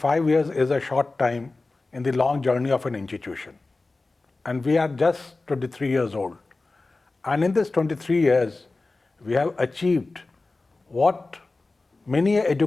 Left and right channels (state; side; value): quieter; right; 3.4 dB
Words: years is a short time in the long journey of an institution. And we are just 23 years old. And in this 23 years, we have achieved what many